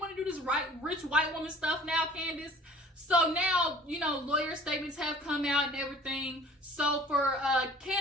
to do this rich white woman stuff now, Candiace? So now, lawyer statements have come out and everything. So for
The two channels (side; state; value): both; normal; correlation 0.50